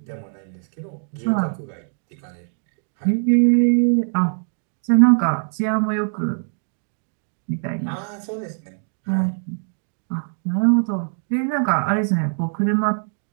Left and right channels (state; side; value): silent; left; digital silence